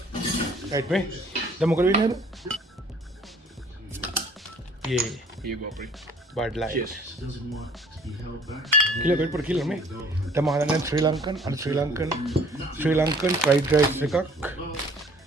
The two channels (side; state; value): both; normal; correlation 0.55